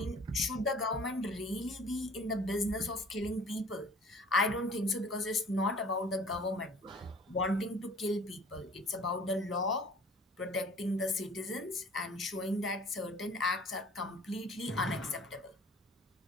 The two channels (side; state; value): both; normal; correlation 0.49